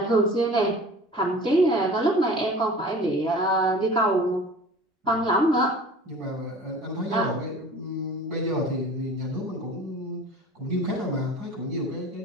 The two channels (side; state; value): both; normal; correlation 0.42